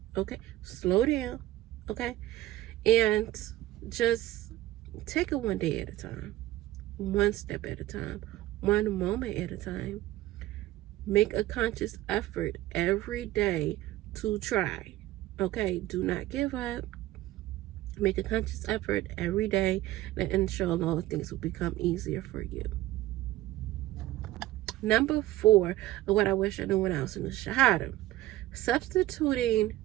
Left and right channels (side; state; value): left; quieter; 15.8 dB